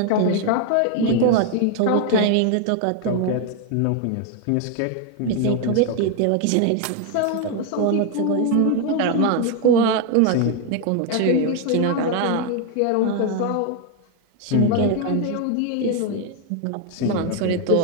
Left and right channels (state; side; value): different; both; correlation 0.01